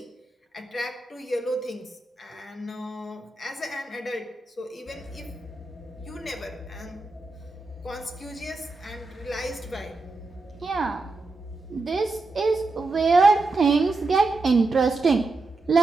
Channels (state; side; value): quieter; left; 3.4 dB